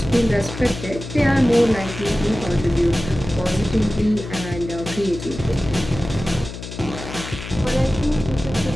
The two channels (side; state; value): left; noise; hum, 10 dB below the sound